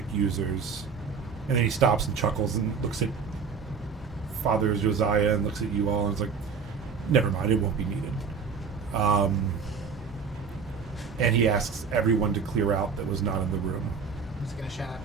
users?" And then he stops and chuckles and looks at Father Josiah and looks at you all and is like, "Never mind, it won't be needed." And he asks everyone to clear out that was not in the room. I'm just gonna shout.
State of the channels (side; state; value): left; quieter; 5.7 dB